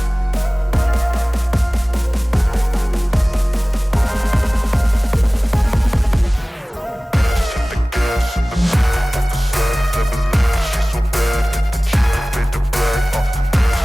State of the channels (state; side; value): normal; both; correlation 0.98